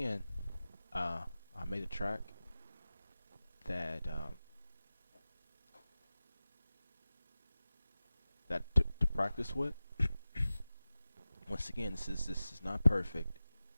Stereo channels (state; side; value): inverted; both; correlation -0.96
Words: I made a track that to practice with. Once again, this is not perfect.